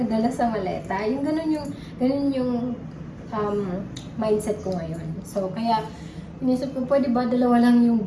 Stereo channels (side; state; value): both; identical; correlation 1.00